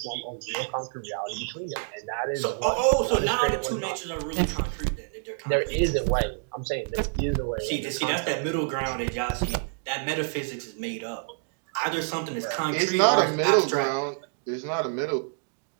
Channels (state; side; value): silent; left; digital silence